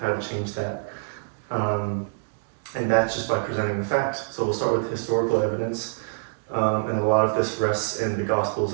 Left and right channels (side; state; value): left; silent; digital silence